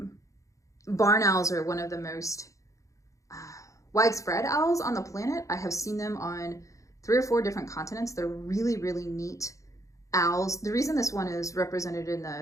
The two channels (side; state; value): right; late; 0.15 ms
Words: Barn owls are one of the most widespread owls on the planet. I have seen them on 3 or 4 different continents. They're really, really neat owls. The reason this one is represented in